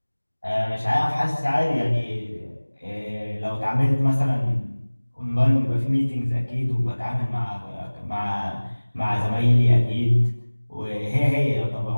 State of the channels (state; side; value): inverted; both; correlation -1.00